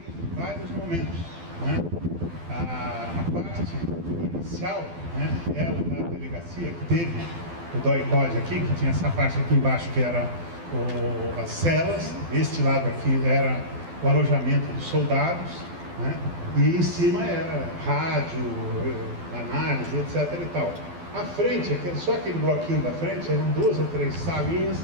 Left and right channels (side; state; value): left; late; 12 ms